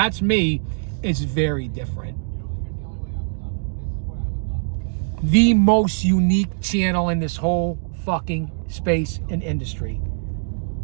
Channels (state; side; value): silent; left; digital silence